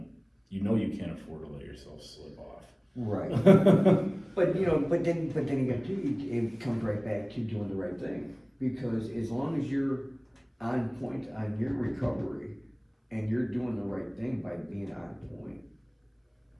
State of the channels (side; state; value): both; identical; correlation 1.00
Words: you know you can't afford to let yourself slip off. Right. But you know, but then again too, it comes right back to doing the right thing, because as long as you're on point on your recovery and you're doing the right thing by being on point,